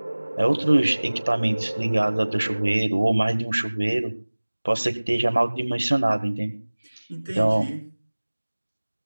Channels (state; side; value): inverted; both; correlation -1.00